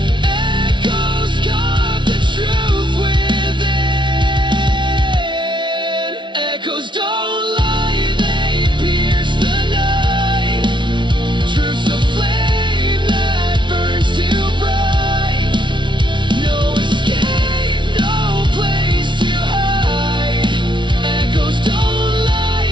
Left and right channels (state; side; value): late; left; 0.24 ms